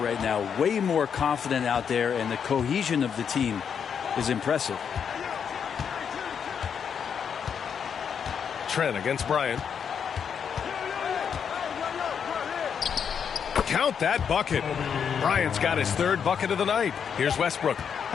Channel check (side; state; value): right; quieter; 7.3 dB